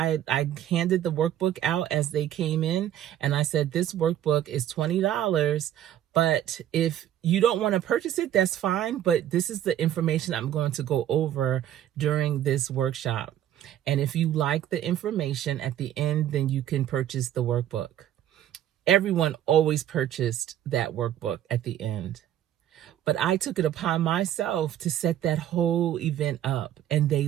handed the workbook out as they came in, and I said, this workbook is $20, But if you don't want to purchase it, that's fine. But this is the information I'm going to go over during this workshop. And if you like the information at the end, then you can purchase the workbook. Everyone always purchased that workbook at the end. But I took it upon myself to set that whole event up, and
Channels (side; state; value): left; quieter; 11.5 dB